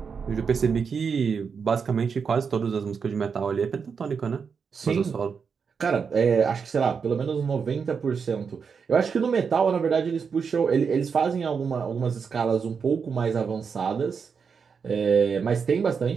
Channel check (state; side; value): quieter; left; 6.0 dB